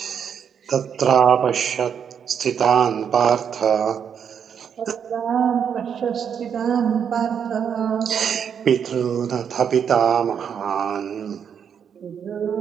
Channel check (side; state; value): left; quieter; 7.7 dB